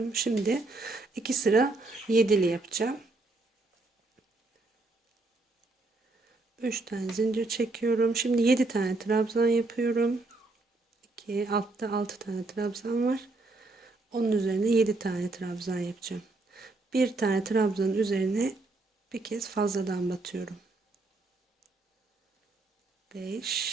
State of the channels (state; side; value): quieter; left; 3.2 dB